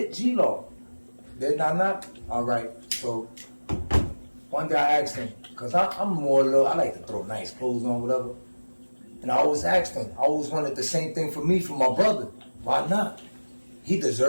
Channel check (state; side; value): inverted; both; correlation -1.00